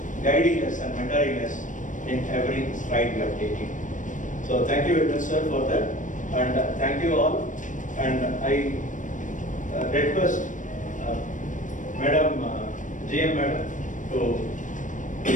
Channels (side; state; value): right; late; 0.37 ms